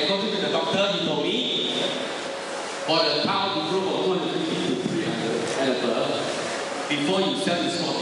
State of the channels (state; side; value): identical; both; correlation 1.00